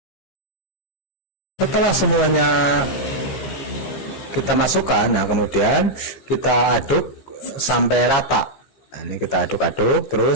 Setelah semuanya kita masukkan, nah kemudian kita aduk sampai rata. Nah, ini kita aduk-aduk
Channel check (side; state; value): right; late; 15 ms